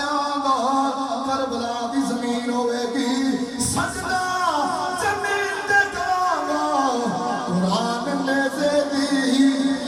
گا کربلا دی زمین ہوئے گی سجدہ زمین تے کراں گا قرآن نیزے دی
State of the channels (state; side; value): identical; both; correlation 1.00